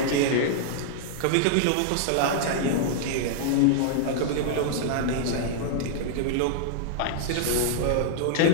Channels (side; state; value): both; different; correlation -0.01